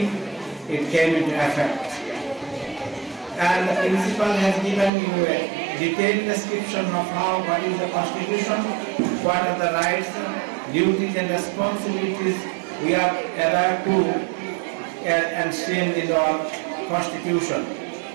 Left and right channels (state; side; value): drops out; left; at 4.9 s